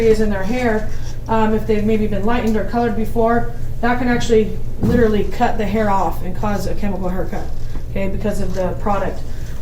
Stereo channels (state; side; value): identical; both; correlation 1.00